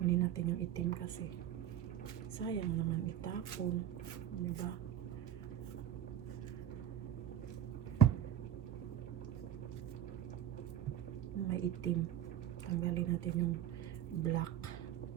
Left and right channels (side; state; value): left; quieter; 10.7 dB